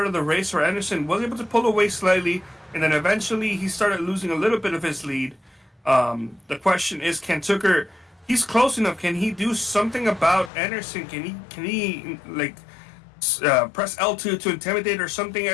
of the race where Anderson was able to pull away slightly and then eventually he started losing a little bit of his lead. The question is, can Tucker, he's close enough, can he do something about Anderson? Can he like press L2 to intimidate or something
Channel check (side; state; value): right; drops out; at 10.5 s